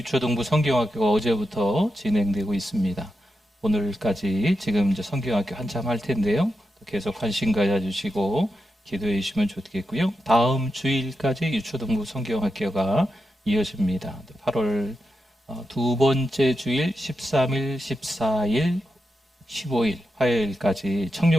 성경학교가 어제부터 진행되고 있습니다. 오늘까지 지금 이제 성경학교 한참 할 텐데요. 계속 관심 가져주시고 기도해 주시면 좋겠고요. 다음 주일까지 유초등부 성경학교가 이어집니다. 8월 두 번째 주일 13일, 14일, 15일 화요일까지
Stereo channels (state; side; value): normal; both; correlation 0.88